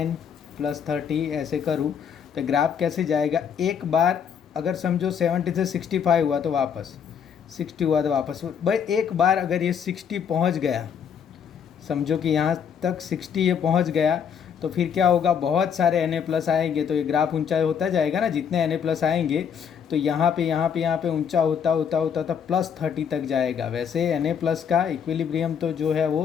+30 ऐसे करूँ तो ग्राफ कैसे जाएगा। एक बार अगर समझो 70 से 65 हुआ तो वापस 60 हुआ तो वापस, भाई एक बार अगर ये 60 पहुँच गया, समझो कि यहाँ तक 60 ये पहुँच गया, तो फिर क्या होगा, बहुत सारे Na+ आएंगे तो ये ग्राफ ऊंचा होता जाएगा ना, जितने Na+ आएंगे तो यहाँ पे ऊंचा होता होता होता था +30 तक जाएगा। वैसे Na+ का इक्विलिब्रियम तो जो है वो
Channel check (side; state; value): right; quieter; 7.5 dB